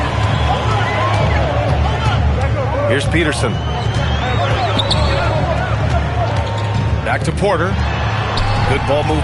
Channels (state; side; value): identical; both; correlation 1.00